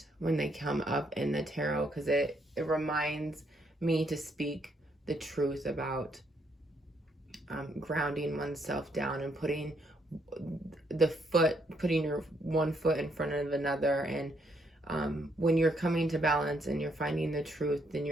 when they come up in the tarot, because it reminds me to speak the truth about grounding oneself down and putting your one foot in front of another. And when you're coming to balance and you're finding the truth, then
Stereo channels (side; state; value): both; normal; correlation 0.73